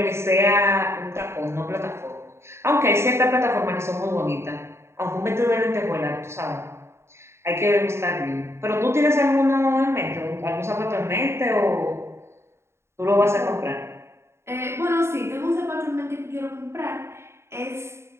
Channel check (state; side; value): late; left; 0.13 ms